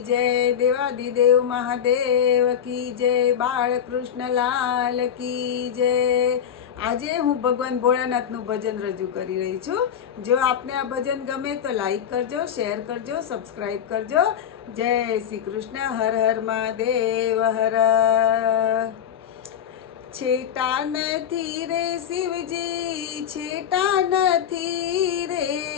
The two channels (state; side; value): quieter; right; 8.9 dB